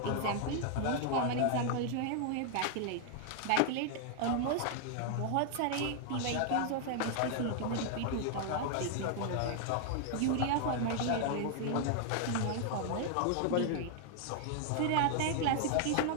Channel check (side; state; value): both; different; correlation 0.00